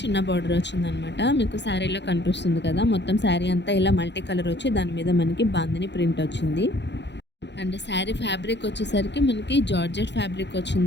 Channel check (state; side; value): late; right; 0.51 ms